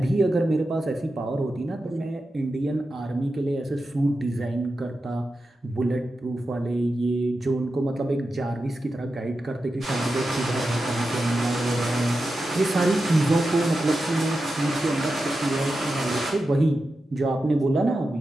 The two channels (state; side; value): normal; both; correlation 0.91